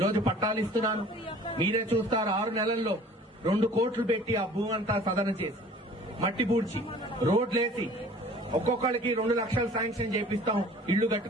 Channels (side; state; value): both; normal; correlation 0.48